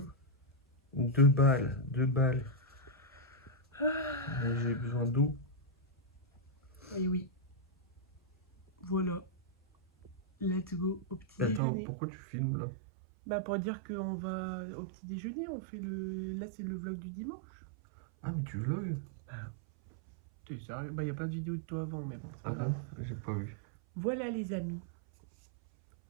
2 balles. Mais j'ai besoin d'eau. Et oui. Voilà. Let's go au petit déjeuner. Attends, pourquoi tu filmes là? Pour dire qu'on va au petit déjeuner, on fait le... Là, c'est le vlog du dimanche. Ah, mais tu vlogs? T'es sérieux? Il y a plein de vidéos de toi avant, mais bon. Ah bon? J'ai pas vu. Voilà les amis.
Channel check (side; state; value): left; drops out; at 11.6 s